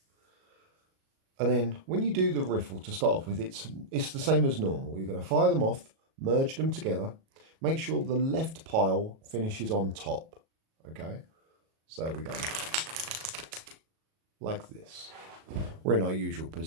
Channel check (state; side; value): late; left; 37 ms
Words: And then when you do the riffle to start off with, it's the same as normal. You're going to fire them off, merge them together, make sure the left pile finishes on top. Okay, so we go like this. We're in our usual